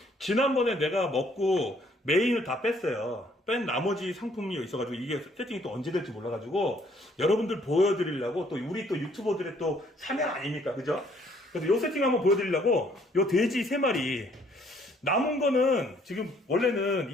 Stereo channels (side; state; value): both; normal; correlation 0.64